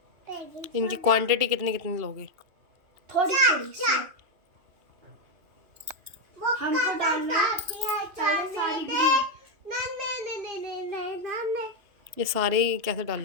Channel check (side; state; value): left; late; 2.7 ms